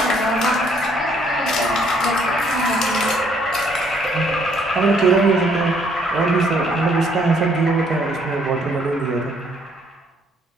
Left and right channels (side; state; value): both; normal; correlation 0.66